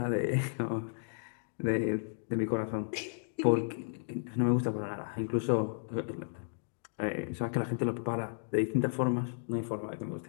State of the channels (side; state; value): right; silent; digital silence